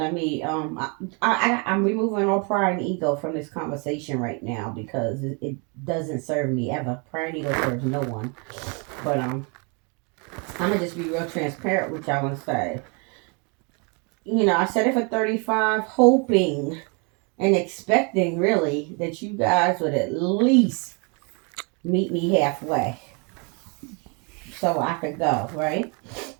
I'm removing all pride and ego from this conversation right now because it doesn't serve me ever. Pride and ego serves no one. But I'm gonna just be real transparent with y'all and say, I said it for 35, hoping and expecting really that you guys would at least meet me halfway so I could go, right?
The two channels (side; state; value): left; quieter; 33.9 dB